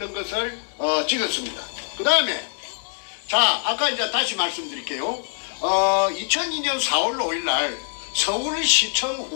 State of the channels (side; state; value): right; silent; digital silence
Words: 것을 찍었습니다. 그 다음에 자 아까 이제 다시 말씀드릴게요. 2002년 4월 5일 날 서울시청